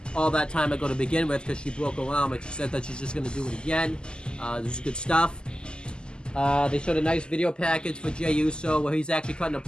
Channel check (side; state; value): right; late; 0.048 ms